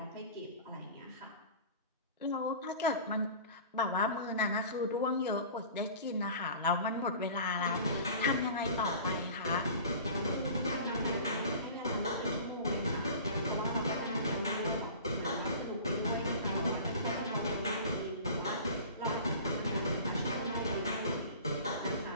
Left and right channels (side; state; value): both; inverted; correlation -0.41